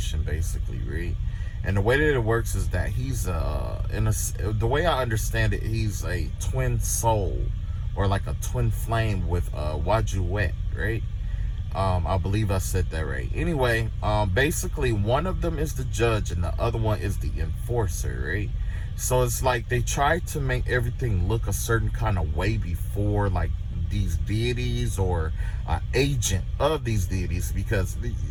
basically, right? And the way that it works is that he's the way I understand it, he's a twin soul, or like a twin flame with Wajuet, right? I believe I said that right. Anyway, basically one of them is the judge and the other one is the enforcer, right? So it's like they try to make everything look a certain kind of way before, like, these deities or agent of these deities, because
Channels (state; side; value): identical; both; correlation 1.00